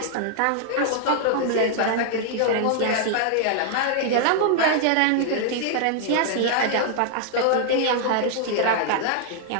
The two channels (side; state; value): both; different; correlation -0.01